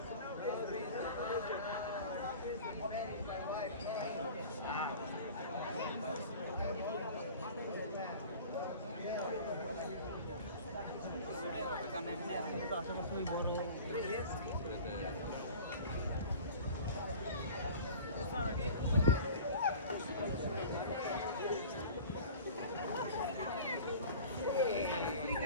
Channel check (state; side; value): inverted; both; correlation -0.41